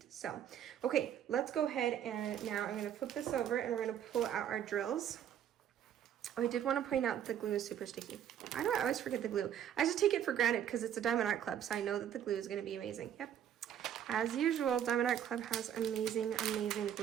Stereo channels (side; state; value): left; quieter; 9.8 dB